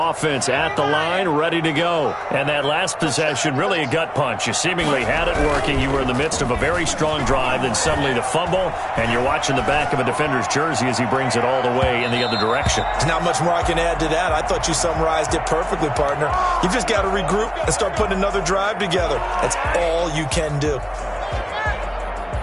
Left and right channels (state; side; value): identical; both; correlation 1.00